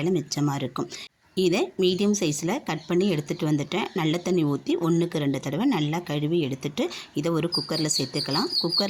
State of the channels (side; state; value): both; identical; correlation 1.00